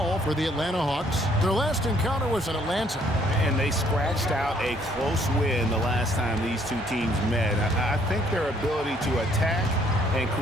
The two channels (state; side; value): normal; both; correlation 0.65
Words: for the Atlanta Hawks. Their last encounter was at Atlanta. And they scratched out a close win the last time these two teams met. I think their ability to attack and